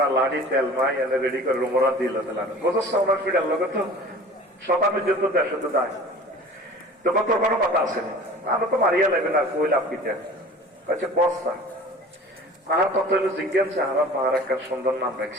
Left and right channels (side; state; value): both; normal; correlation 0.42